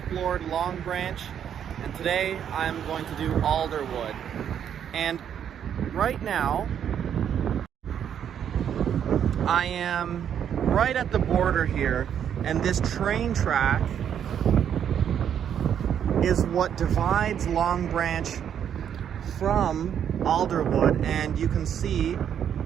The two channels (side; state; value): left; quieter; 8.9 dB